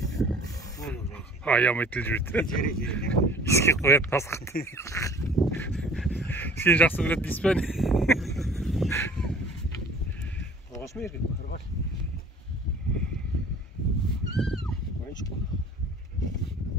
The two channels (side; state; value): both; normal; correlation 0.48